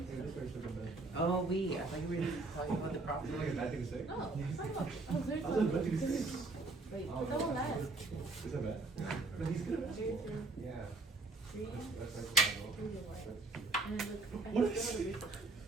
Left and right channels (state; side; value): quieter; left; 3.3 dB